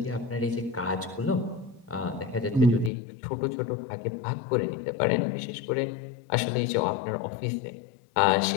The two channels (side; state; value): right; drops out; at 2.9 s